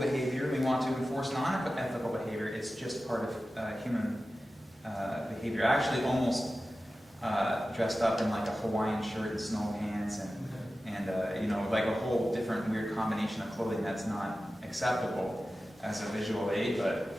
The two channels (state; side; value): normal; both; correlation 0.94